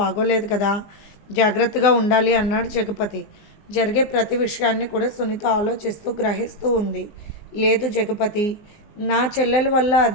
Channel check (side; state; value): right; late; 19 ms